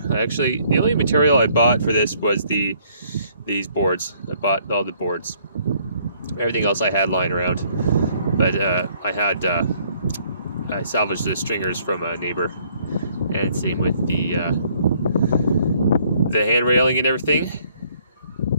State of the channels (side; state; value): both; inverted; correlation -0.64